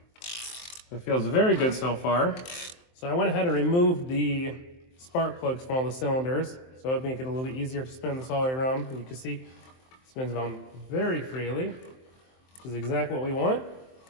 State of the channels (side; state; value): right; late; 23 ms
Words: It feels very good so far. So I went ahead and removed the spark plugs from all the cylinders, so it'd make it a little bit easier to spin this all the way around. You can see it spins around very freely, which is exactly what we want.